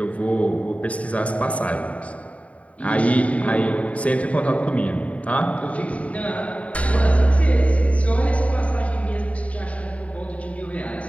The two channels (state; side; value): late; right; 0.066 ms